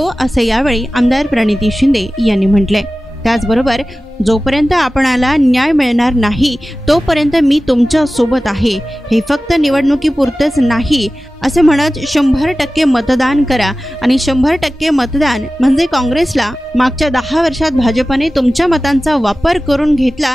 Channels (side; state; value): both; normal; correlation 0.96